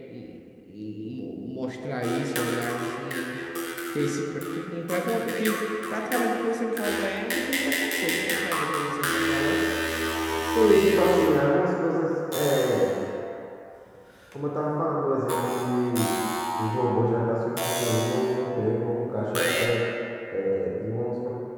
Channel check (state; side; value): identical; both; correlation 1.00